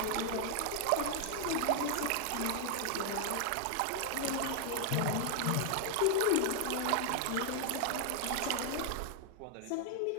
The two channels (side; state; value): both; different; correlation 0.00